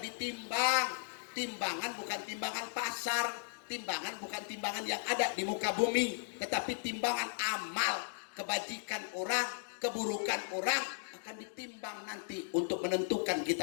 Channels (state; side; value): silent; right; digital silence